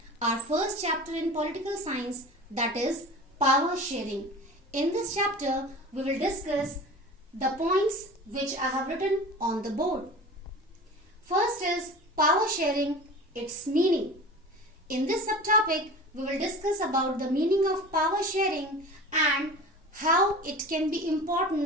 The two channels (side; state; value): both; normal; correlation 0.36